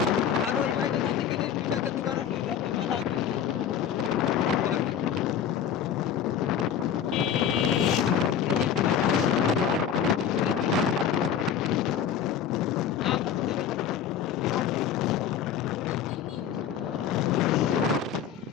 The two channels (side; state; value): right; quieter; 8.5 dB